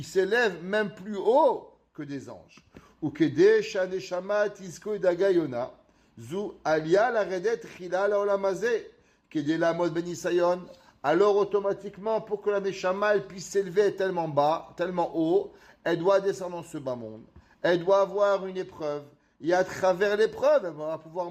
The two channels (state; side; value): identical; both; correlation 1.00